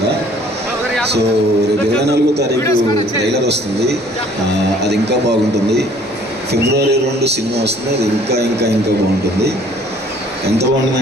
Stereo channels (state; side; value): normal; both; correlation 0.56